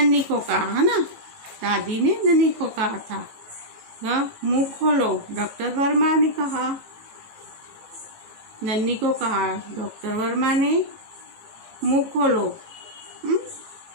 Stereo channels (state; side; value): late; left; 18 ms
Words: को कहा, है ना, दादी ने नन्ही को कहा था। मुंह खोलो, डॉक्टर वर्मा ने कहा। नन्ही को कहा डॉक्टर वर्मा ने, मुंह खोलो।